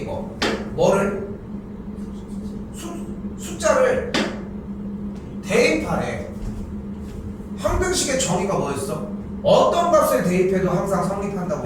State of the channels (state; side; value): identical; both; correlation 1.00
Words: 뭐를? 숫자를 대입하래. 항등식의 정의가 뭐였어? 어떤 값을 대입해도 항상